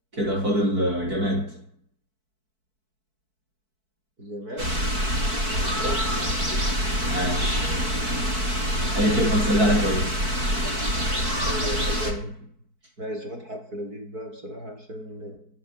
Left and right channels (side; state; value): left; late; 4.6 ms